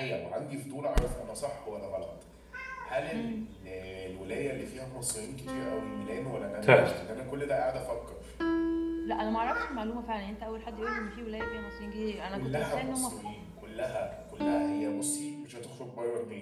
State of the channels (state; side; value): identical; both; correlation 1.00